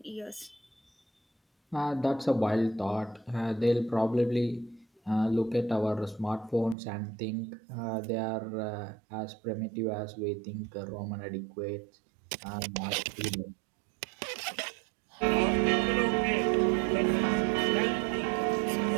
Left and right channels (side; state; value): left; drops out; at 6.8 s